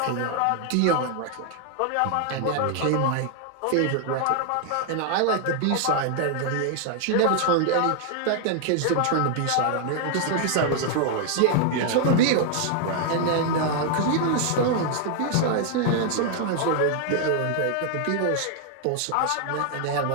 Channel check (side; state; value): both; different; correlation 0.00